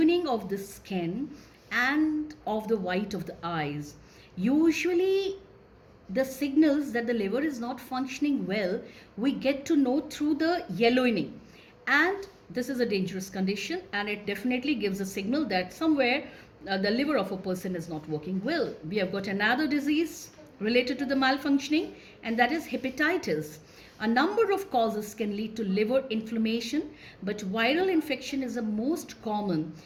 of the skin and of the white of the eyes. Usually the signals that the liver is not functioning well, we get to know through the yellowing, and this is a dangerous condition, and it definitely gives a signal that somewhere the liver of a person is not working well. We have got another disease related to the malfunctioning, and that is hepatitis. A number of causes can lead to liver inflammation, but viral infection is the most common,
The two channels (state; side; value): identical; both; correlation 1.00